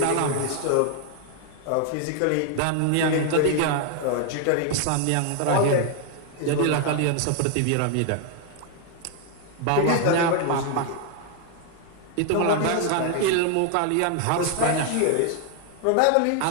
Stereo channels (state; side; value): different; both; correlation 0.00